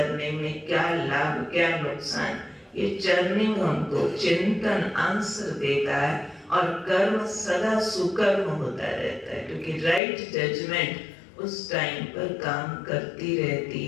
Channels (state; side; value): drops out; right; at 10.0 s